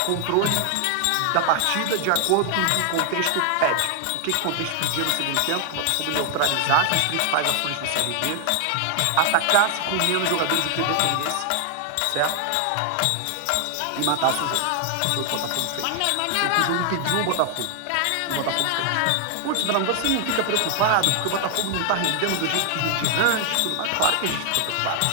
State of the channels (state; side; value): different; both; correlation 0.00